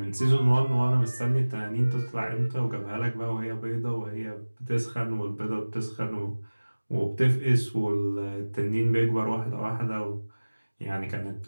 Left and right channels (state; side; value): inverted; both; correlation -1.00